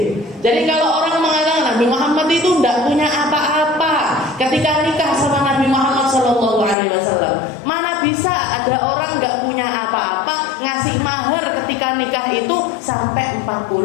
Jadi kalau orang mengatakan Nabi Muhammad itu tidak punya apa-apa ketika nikah sama Nabi Muhammad Sallallahu Alaihi Wasallam, mana bisa ada orang nggak punya apa-apa ngasih mahar ketika nikah itu sampai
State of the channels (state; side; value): drops out; right; at 6.8 s